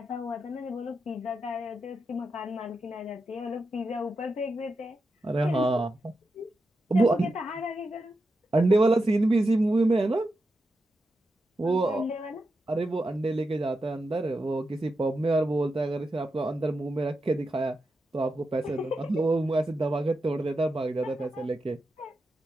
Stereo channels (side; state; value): both; normal; correlation 0.88